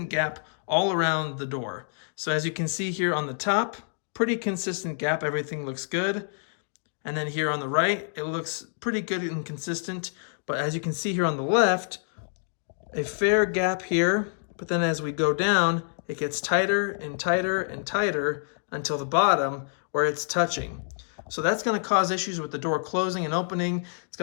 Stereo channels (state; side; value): silent; right; digital silence